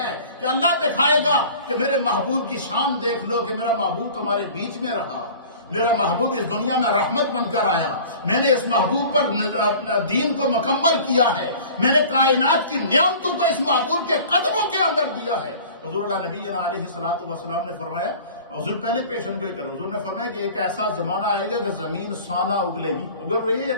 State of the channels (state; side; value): inverted; both; correlation -0.43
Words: کہ اللہ دکھائے گا کہ میرے محبوب کی شان دیکھ لو کہ میرا محبوب تمہارے بیچ میں رہا, میرا محبوب اس دنیا میں رحمت بن کر آیا, میں نے اس محبوب پر دین کو مکمل کیا ہے, میں نے کائنات کی نعمتوں کو اس محبوب کے قدموں کے اندر دیا ہے. حضور اللہ نبی علیہ الصلوۃ والسلام نے فرمایا, حضور پہلے پیشن گوئی کرو, حضور نے فرمایا کہ ایک ایسا زمانہ آئے گا کہ زمین سونا اگلے گی. اگل رہی ہے یا